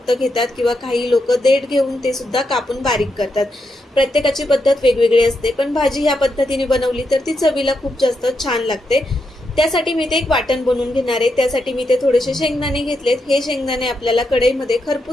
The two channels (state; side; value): normal; both; correlation 0.83